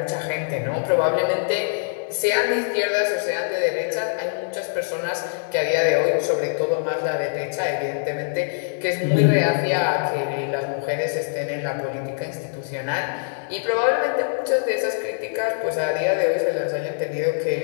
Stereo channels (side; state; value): right; silent; digital silence